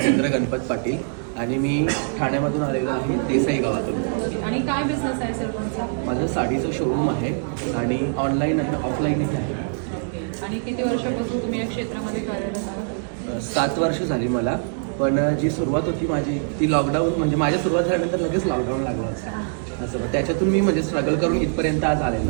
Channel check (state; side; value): silent; left; digital silence